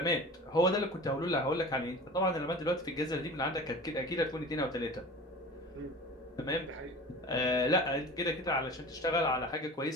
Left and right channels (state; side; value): normal; both; correlation 0.37